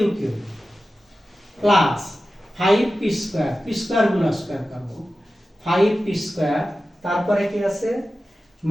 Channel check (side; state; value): both; normal; correlation 0.94